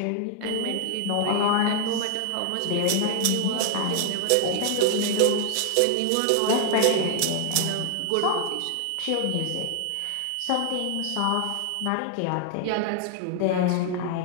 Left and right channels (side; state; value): both; different; correlation 0.00